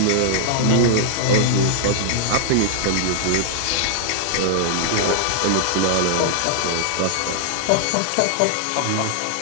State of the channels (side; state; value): both; different; correlation -0.01